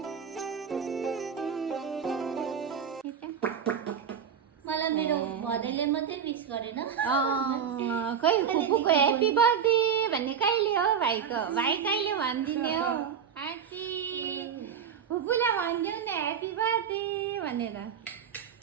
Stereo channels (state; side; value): quieter; left; 7.7 dB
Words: मलाई मेरो भदैले मात्रै विश गरेन खै फुपूको ह्यापी बर्थडे भन्ने कहिले हो भाइको भाइ कहिले भनिदिने हो ह्यापी फुपूलाई भनिदेऊ न ह्यापी बर्थडे भनेर